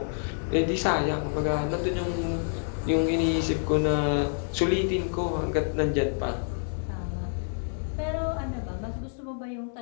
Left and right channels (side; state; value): right; silent; 59 dB below the other